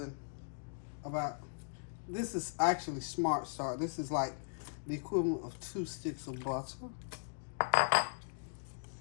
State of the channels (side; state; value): right; silent; digital silence